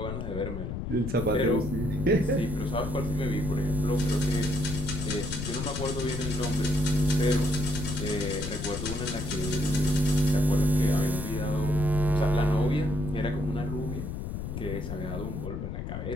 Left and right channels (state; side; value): noise; left; rumble, 5 dB below the sound